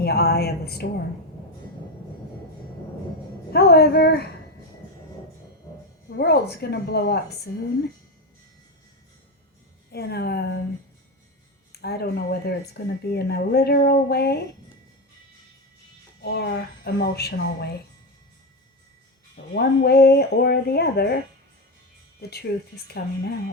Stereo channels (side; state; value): both; normal; correlation 0.13